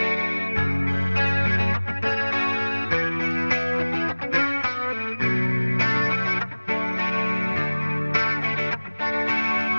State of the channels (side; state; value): both; inverted; correlation -1.00